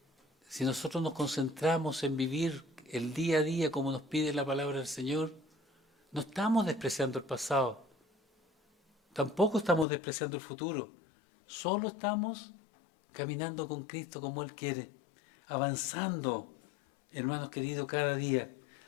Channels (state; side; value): drops out; right; at 9.9 s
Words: Si nosotros nos concentramos en vivir el día a día como nos pide la palabra del Señor, no estamos despreciando el pasado, tampoco estamos despreciando el futuro, solo estamos caminando con Cristo como Él quiere, avanzando, hermanos queridos, cada día.